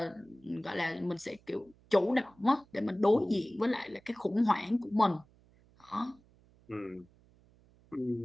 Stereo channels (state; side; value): noise; right; hum, 29 dB below the sound